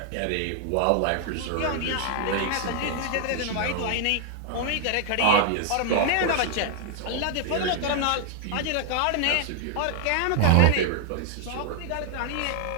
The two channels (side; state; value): both; different; correlation 0.00